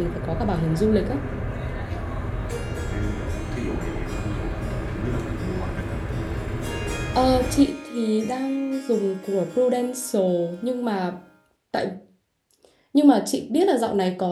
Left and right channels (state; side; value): identical; both; correlation 1.00